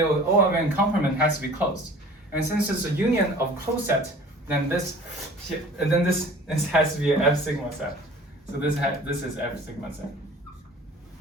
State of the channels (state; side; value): normal; both; correlation 0.46